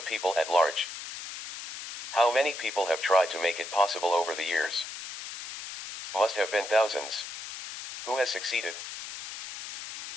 people at large. How many people have tried to make it possible over the years? Must have been thousands. Who has succeeded?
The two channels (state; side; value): noise; left; hiss, 10 dB below the sound